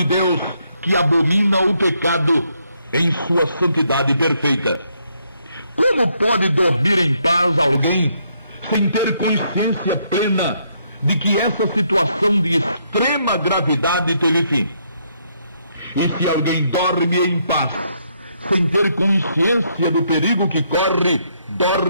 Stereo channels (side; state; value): both; inverted; correlation -0.73